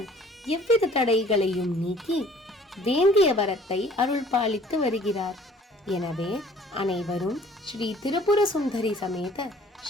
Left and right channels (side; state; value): both; normal; correlation 0.53